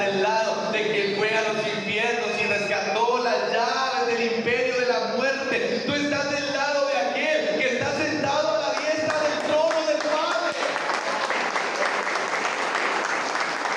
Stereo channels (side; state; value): both; identical; correlation 1.00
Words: lado de que fue a los infiernos y rescató las llaves del imperio de la muerte. Tú estás del lado de aquel que está sentado a la diestra del trono del Padre.